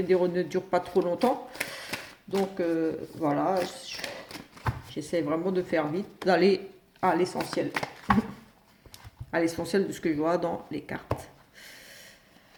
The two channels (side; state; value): both; identical; correlation 1.00